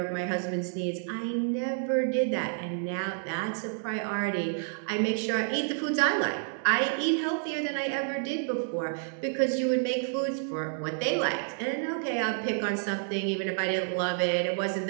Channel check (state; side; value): silent; left; 58 dB below the other